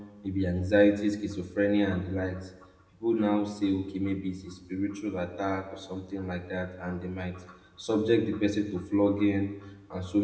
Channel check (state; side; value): identical; both; correlation 1.00